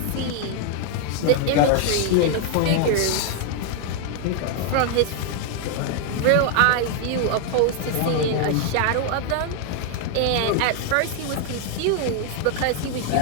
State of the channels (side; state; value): both; different; correlation 0.00